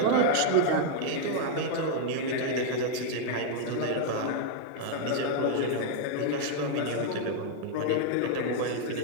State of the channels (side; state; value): both; different; correlation 0.00